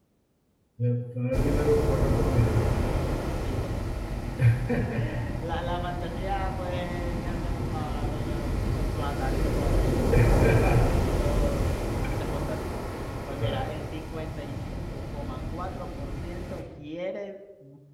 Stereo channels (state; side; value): identical; both; correlation 1.00